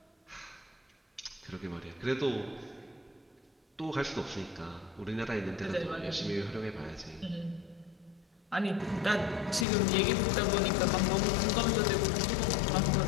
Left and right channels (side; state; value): right; drops out; at 9.7 s